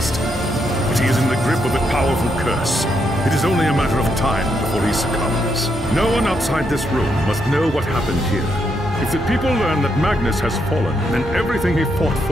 But he is in the grip of a powerful curse. It is only a matter of time before he succumbs. No one outside this room must know what happened here. If the people learn that Magnus has fallen, then everything he fought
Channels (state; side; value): normal; both; correlation 0.79